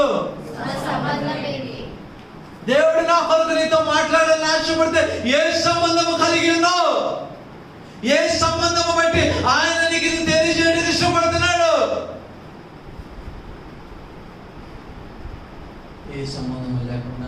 దేవుడు నా కొరకు నీతో మాట్లాడాలని ఆశపడితే ఏ సంబంధము కలిగి ఉన్నావు? ఏ సంబంధము బట్టి ఆయన నీకు ఇది తెలియజేయడానికి ఇష్టపడుతున్నాడు? ఏ సంబంధము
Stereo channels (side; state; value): both; identical; correlation 1.00